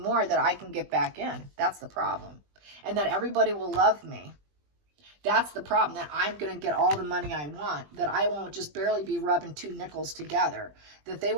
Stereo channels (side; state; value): left; late; 20 ms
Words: that I can get back in. That's the problem. And that everybody will love me. That's the problem, that I'm going to get all the money I want, that I won't just barely be rubbing two nickels together, that they